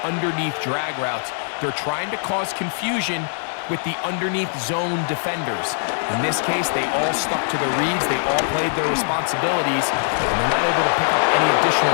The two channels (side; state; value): right; silent; digital silence